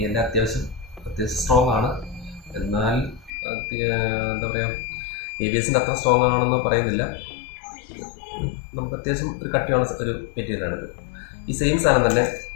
അത്യാവശ്യം സ്ട്രോങ് ആണ്. എന്നാൽ എന്താ പറയുക, ABSൻ്റെ അത്ര സ്ട്രോങ് ആണെന്ന് പറയുന്നില്ല. നമുക്ക് അത്യാവശ്യം ഒരു കട്ടിയുള്ള ഒരു മെറ്റീരിയലാണിത്. ഈ സെയിം സാധനം തന്നെ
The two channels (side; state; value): right; drops out; at 3.3 s